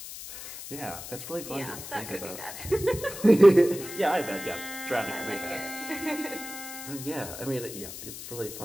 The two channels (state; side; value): noise; left; hiss, 11 dB below the sound